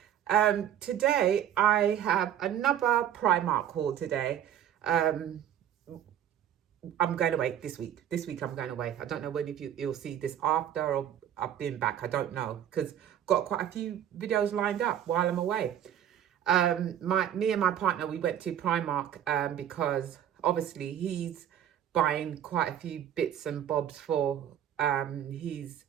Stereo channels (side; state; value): left; quieter; 10.2 dB